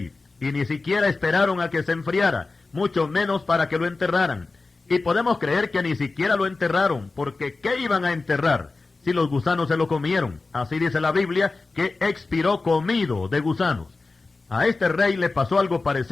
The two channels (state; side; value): quieter; right; 3.7 dB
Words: y ni siquiera esperaron a que se enfriara, mucho menos para que lo enterraran. Y podemos creer que ni siquiera lo enterraron, porque ¿qué iban a enterrar si los gusanos se lo comieron? Así dice la Biblia, que expiró comido de gusanos. A este rey le pasó algo